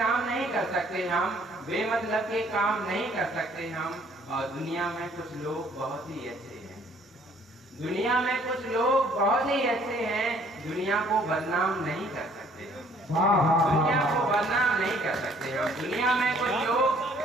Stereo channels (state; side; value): normal; both; correlation 0.60